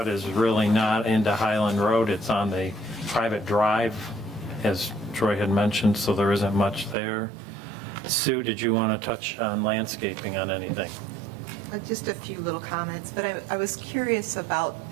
is really not into Highland Road. It's on the private drive, as Troy had mentioned, so there isn't much there. Sue, did you want to touch on landscaping on anything? Just a few little comments, but I was curious about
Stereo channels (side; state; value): left; drops out; at 7.0 s